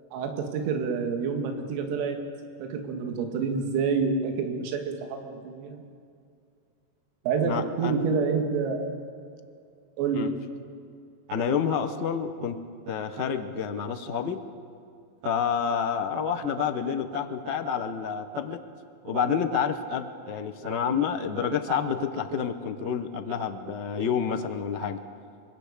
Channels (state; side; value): late; left; 21 ms